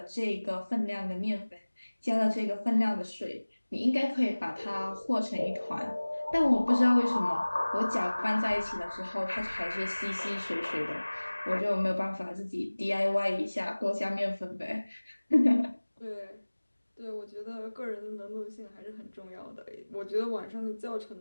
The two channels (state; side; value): inverted; both; correlation -1.00